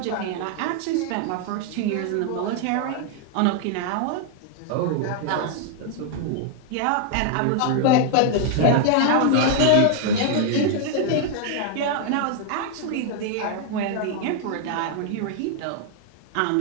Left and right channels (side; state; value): both; different; correlation 0.00